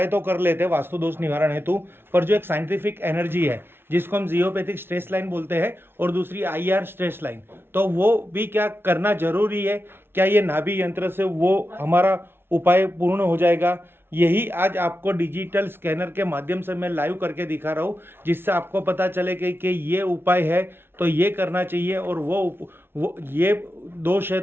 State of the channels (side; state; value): left; late; 0.11 ms